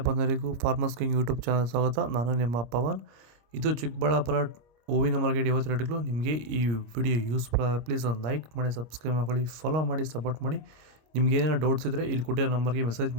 ಬಂಧುಗಳಿಗೂ ಫಾರ್ಮರ್ಸ್ ಕಿಂಗ್ ಯೂಟ್ಯೂಬ್ ಚಾನಲ್ ಸ್ವಾಗತ. ನಾನು ನಿಮ್ಮ ಪವನ್. ಇದು ಚಿಕ್ಕಬಳ್ಳಾಪುರ ಹೂವಿನ ಮಾರ್ಕೆಟ್ 50 ರೇಟ್ಗಳು. ನಿಮಗೆ ಈ ವಿಡಿಯೋ ಯೂಸ್ ಪ್ಲೀಸ್ ಒಂದು ಲೈಕ್ ಮಾಡಿ, ಸಬ್ಸ್ಕ್ರೈಬ್ ಮಾಡ್ಕೊಳ್ಳಿ, ಫಾಲೋ ಮಾಡಿ, ಸಪೋರ್ಟ್ ಮಾಡಿ. ನಿಮ್ಗೆ ಏನಾರು ಡೌಟ್ಸ್ ಇದ್ದರೆ ಇಲ್ಲಿ ಕೊಟ್ಟಿರೋ ನಂಬರ್ಗೆ ಮೆಸೇಜ್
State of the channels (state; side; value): late; left; 26 ms